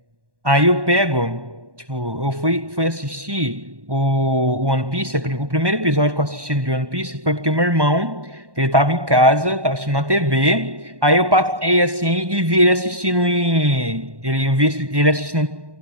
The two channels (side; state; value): left; late; 1.1 ms